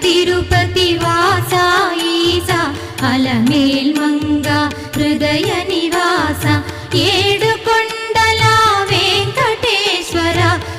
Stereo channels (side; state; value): both; identical; correlation 1.00